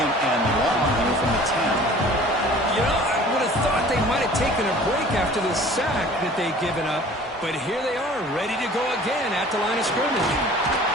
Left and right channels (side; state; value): both; normal; correlation 0.47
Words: and long here from the 10. You know, I would have thought they might have taken a break after the sack that they'd given up. But here they are, ready to go again at the line of scrimmage.